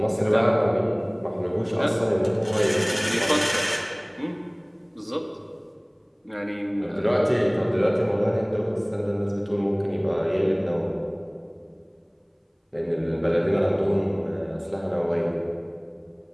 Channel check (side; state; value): both; identical; correlation 1.00